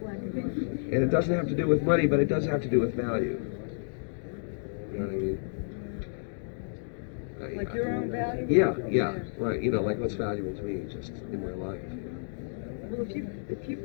and white. And it doesn't have to do with money, but it does have to do with value. You know what I mean? Like your own value? Yeah, right. You know, like what's valuable to me just in my life. You know? Well, if you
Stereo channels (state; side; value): silent; right; digital silence